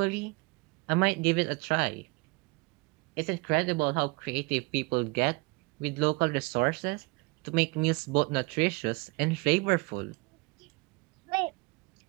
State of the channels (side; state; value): left; quieter; 27.2 dB